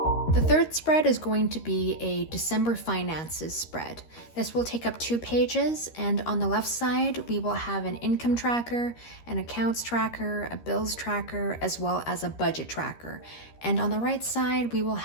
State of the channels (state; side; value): late; right; 13 ms